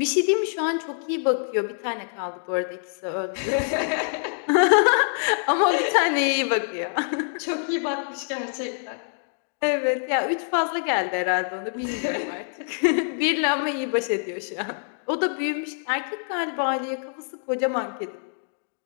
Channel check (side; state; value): right; silent; 62 dB below the other